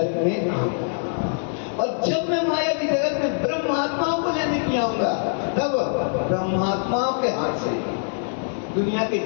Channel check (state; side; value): silent; right; 63 dB below the other